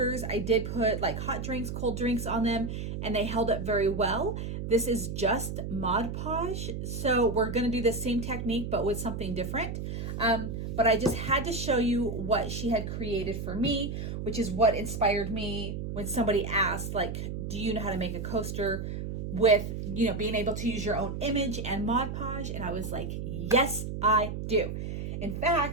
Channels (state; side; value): noise; right; hum, 5 dB below the sound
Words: I did put hot drinks, cold drinks on them, and they held up very well. This is just Mod Podge, so we're gonna do the same technique but with something different. But I just had to show you what she had created for me, which is what inspired me when somebody asked, do you know how to make a coaster with, being able to use your own image and Mod Podge? And I was like, yes, I do. In